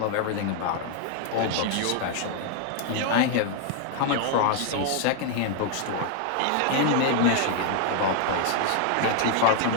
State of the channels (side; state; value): both; different; correlation 0.00